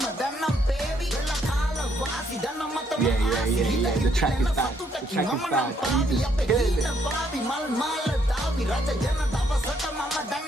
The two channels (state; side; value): normal; both; correlation 0.71